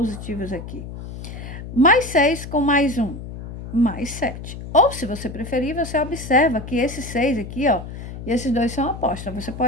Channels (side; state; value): left; noise; hum, 10 dB below the sound